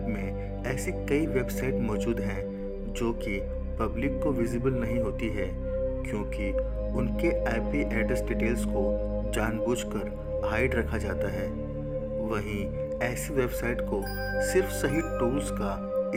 में ऐसी कई वेबसाइट मौजूद हैं जो कि पब्लिक को विजिबल नहीं होती है, क्योंकि उनके IP एड्रेस डिटेल्स को जानबूझकर हाइड रखा जाता है। वहीं ऐसी वेबसाइट को सिर्फ सही टूल्स का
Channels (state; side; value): identical; both; correlation 1.00